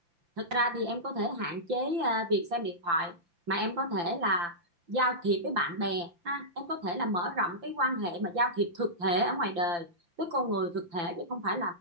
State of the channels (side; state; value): left; late; 5.8 ms